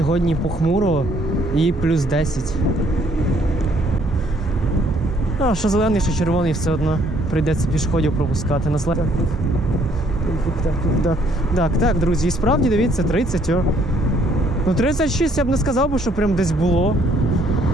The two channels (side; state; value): both; normal; correlation 0.65